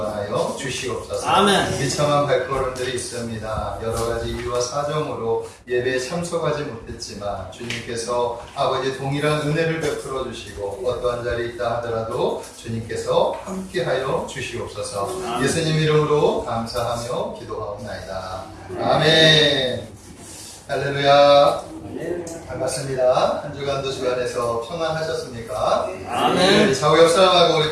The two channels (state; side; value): identical; both; correlation 1.00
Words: 주시옵소서. 아멘. 비참한 발걸음들이 있습니다. 여러 가지 이유와 사정으로 예배에 참석하지 못했지만 주님께서 아버지 동일한 은혜를 베풀어 주시고 어떠한 자리에 있다 하더라도 주님께서 함께하여 주시옵소서. 예수님 이름으로 감사하며 기도하옵나이다. 아멘. 할렐루야. 반갑습니다. 한 주간도 주간에서 평안하셨습니까? 아멘. 좌우 옆 사람하고